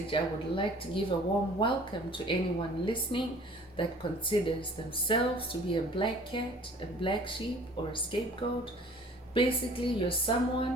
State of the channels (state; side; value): normal; both; correlation 0.50